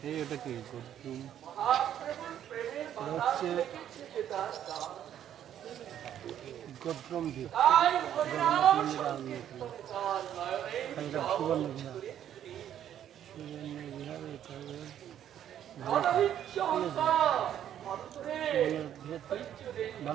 এই ওটা কি হচ্ছে গদ্রম দ্বীপ, জগন্নাথ মন্দির সুবর্ণ বিহার, সুবর্ণ বিহার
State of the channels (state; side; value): quieter; left; 10.5 dB